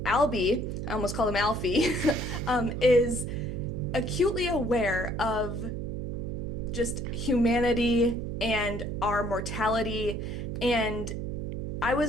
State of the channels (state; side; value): noise; right; hum, 4 dB below the sound